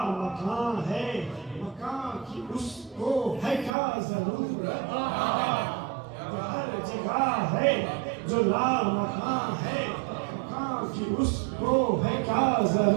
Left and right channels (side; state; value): left; drops out; at 3.7 s